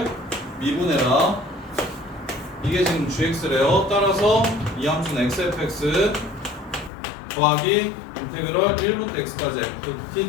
미분해라. 이게 지금 gx래요. 따라서 이 함수는 xfx 더하기 인테그럴 1부터 x까지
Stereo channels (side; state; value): right; drops out; at 6.9 s